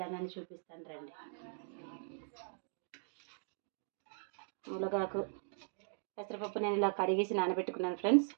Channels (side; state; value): left; silent; digital silence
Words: చూపిస్తాను రండి. మునగాకు, పెసరపప్పు నేను ఇలా కడిగేసి నానబెట్టుకున్నాను ఫ్రెండ్స్.